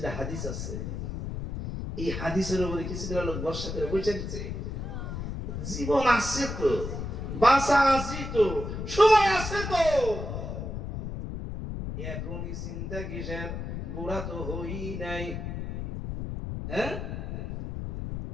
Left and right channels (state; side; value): noise; left; rumble, 5 dB below the sound